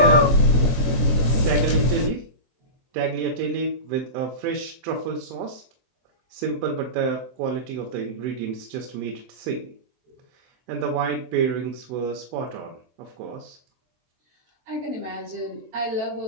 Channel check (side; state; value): left; late; 23 ms